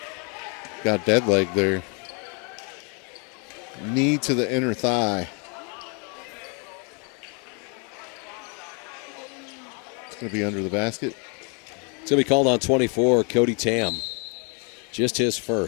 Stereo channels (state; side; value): quieter; right; 36.0 dB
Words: Got dead leg there. Knee to the inner thigh. It's going to be under the basket. It's going to be called on 24, Cody Tam. Just his